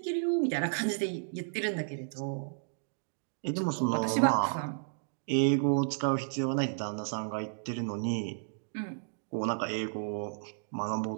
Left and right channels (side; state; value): left; silent; digital silence